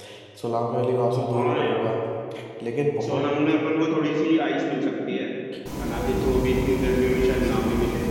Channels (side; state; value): both; identical; correlation 1.00